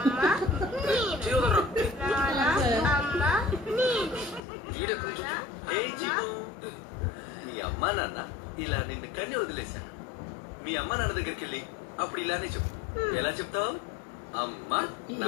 నేను, నానా అమ్మ నేను. ఏ చిక్కు, మీ అమ్మా నాన్న ఇలా నిన్ను కన్ని వదిలేశాను. మీ అమ్మ నాన్న దగ్గరికి వెళ్ళి అప్పుడు ఇలానే చెప్పు. ఎలా చెప్తావు? అమ్మ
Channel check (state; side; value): drops out; right; at 4.4 s